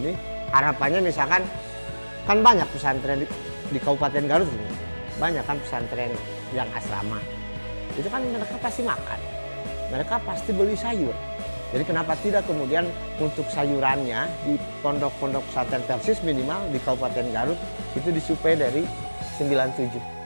harapannya misalkan kan banyak pesantren di Kabupaten Garut ini. Banyak kan pesantren yang asrama. Itu kan mereka pasti makan. Mereka pasti beli sayur. Jadi kenapa tidak kemudian untuk sayurannya di pondok-pondok pesantren Persis minimal di Kabupaten Garut itu disuplai dari 97.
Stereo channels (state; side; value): inverted; both; correlation -1.00